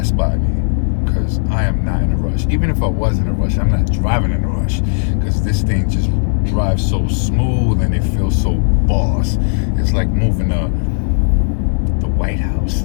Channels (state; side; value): silent; right; 62 dB below the other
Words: by me, because I am not in a rush. Even if I was in a rush, I'm not driving in a rush, because this thing just drives so smooth and it feels so boss. It's like moving the White House.